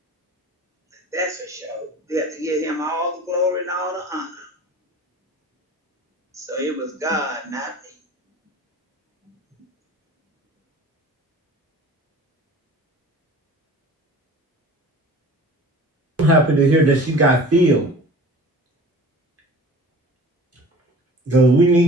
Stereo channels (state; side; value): normal; both; correlation 0.42